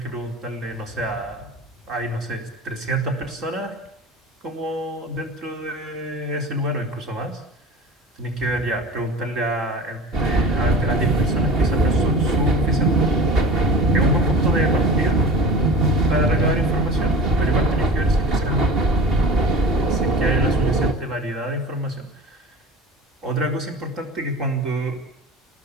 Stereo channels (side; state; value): both; normal; correlation 0.36